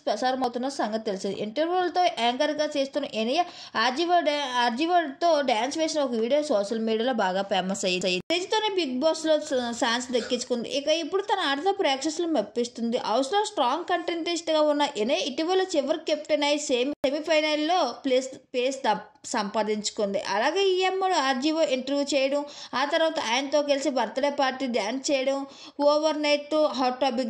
ప్రసారం అవుతున్న సంగతి తెలిసింది. ఇంటర్వ్యూలతో యాంకర్గా చేస్తున్న ఎనియా ఆర్జీవర్తో డ్యాన్స్ వేసిన ఒక వీడియో సోషల్ మీడియాలో బాగా ఫేమస్ అయ్యింది. తేజతోనే బిగ్ బాస్లో ఛాన్స్ దక్కించుకుంది. ఇక ఇప్పుడు తన ఆటతో ప్రేక్షకులను మెప్పిస్తుంది. హౌస్లో స్ట్రాంగ్ కంటెస్టెంట్గా ఉన్న ఎనియా ఇటీవల చివరి కెప్టెన్ అయి సెమీఫైనల్లో ప్లేస్ సంపాదించుకుంది. అలాగే ఈ అమ్మడు ఆర్జీఓ ఇంటర్వ్యూ చేయడం, ఆ తర్వాత ఆయనతో కలిసి బర్త్డే పార్టీ డ్యాన్స్ చేయడం ఓవర్ నైట్ హాట్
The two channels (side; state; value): both; identical; correlation 1.00